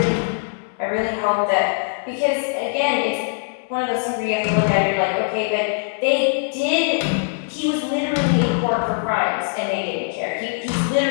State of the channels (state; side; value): silent; right; digital silence